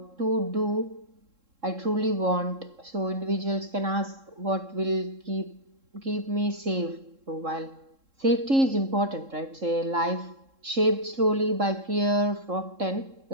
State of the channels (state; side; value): late; left; 3.7 ms